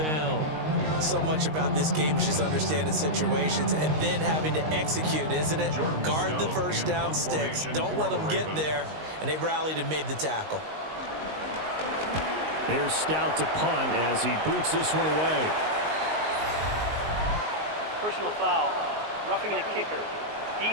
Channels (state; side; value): late; left; 19 ms